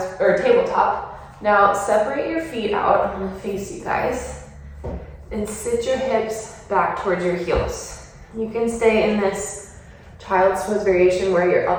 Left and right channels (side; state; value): both; identical; correlation 1.00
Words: or tabletop. Now separate your feet out. I'm gonna face you guys and sit your hips back towards your heels. You can stay in this child's pose variation where you're